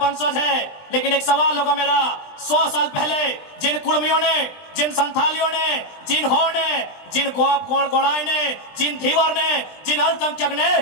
है। लेकिन एक सवाल होगा मेरा, 100 साल पहले जिन कुर्मियों ने, जिन संथालियों ने, जिन हो ने, जिन गोड़ाई ने, जिन धीवर ने, जिन अल्पसंख्यक ने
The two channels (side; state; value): right; late; 20 ms